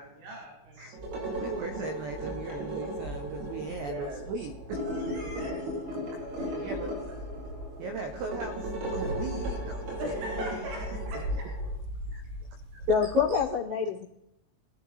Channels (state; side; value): late; left; 19 ms